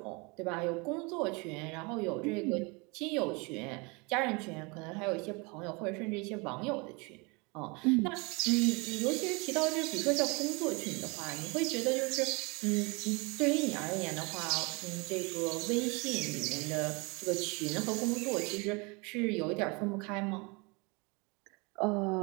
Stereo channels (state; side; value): quieter; left; 28.8 dB